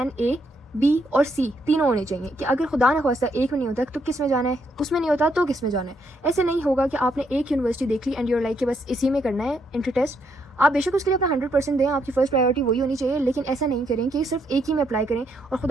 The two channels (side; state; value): both; normal; correlation 0.75